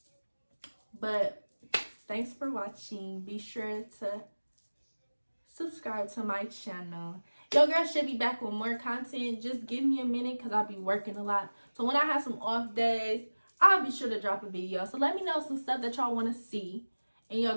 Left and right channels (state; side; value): inverted; both; correlation -1.00